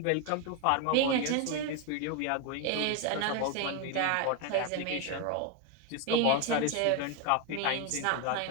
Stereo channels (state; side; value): different; both; correlation 0.01